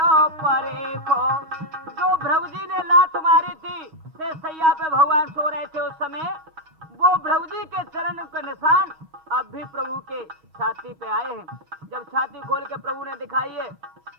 परेखो। जो प्रभु जी ने लात मारी थी से सैया पे भगवान सो रहे थे उस समय, वो प्रभु जी के चरण का निशान अब भी प्रभु के छाती पे आए हैं। जब छाती खोल के प्रभु ने दिखाई है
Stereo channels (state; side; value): late; left; 6.3 ms